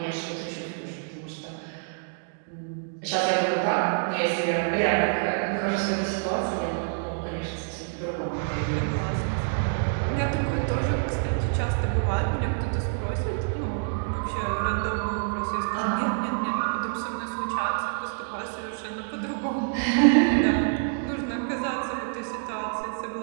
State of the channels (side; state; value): left; silent; digital silence